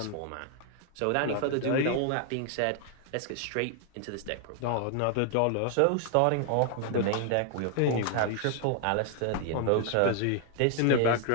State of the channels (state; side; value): different; both; correlation 0.00